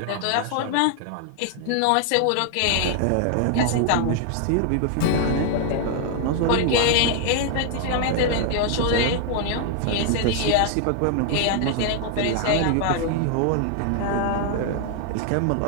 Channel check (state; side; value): different; both; correlation 0.00